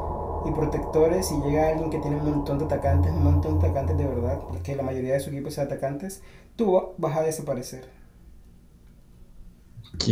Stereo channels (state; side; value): identical; both; correlation 1.00